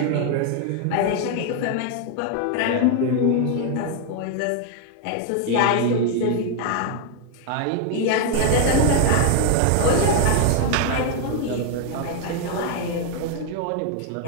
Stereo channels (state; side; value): different; both; correlation 0.01